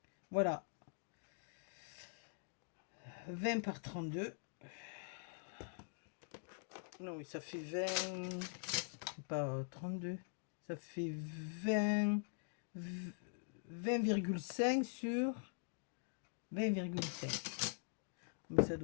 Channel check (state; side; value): silent; right; digital silence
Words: Voilà. 20 par 32. Non, ça fait 20... C'est pas 32. Ça fait 20,5 sur 20,5. Mais ça